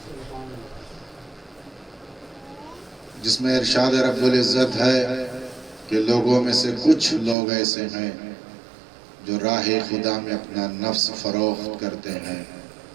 جس میں ارشاد رب العزت ہے کہ لوگوں میں سے کچھ لوگ ایسے ہیں جو راہ خدا میں اپنا نفس فروخت کرتے ہیں.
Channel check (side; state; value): left; drops out; at 7.4 s